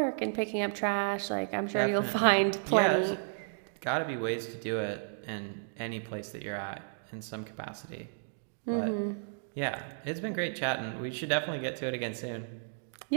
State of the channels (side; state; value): left; silent; digital silence